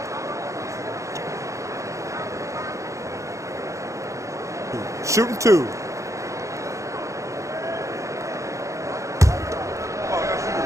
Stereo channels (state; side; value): late; left; 0.15 ms